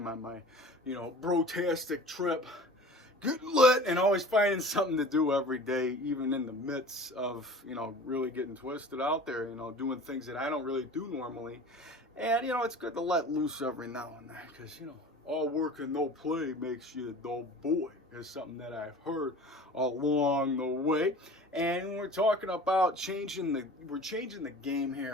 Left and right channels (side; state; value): both; normal; correlation 0.41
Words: on my brotastic trip. Get lit and always finding something to do every day, even in the midst of, really getting twisted out there, doing things that I don't really do normally. And, it's good to let loose every now and then, because, all work and no play makes you a dull boy. Is something that I've heard along the way. And we're talking about changing the game